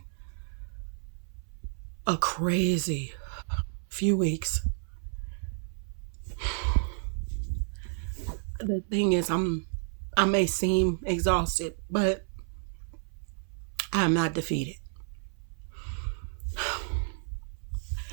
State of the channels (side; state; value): left; silent; 57 dB below the other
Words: a crazy few weeks. The thing is, I may seem exhausted, but I'm not defeated.